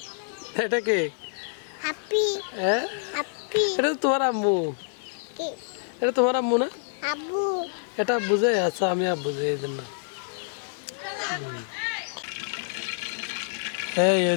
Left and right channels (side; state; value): right; silent; digital silence